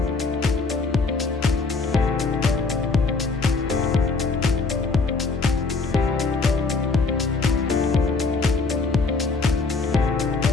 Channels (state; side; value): quieter; right; 4.1 dB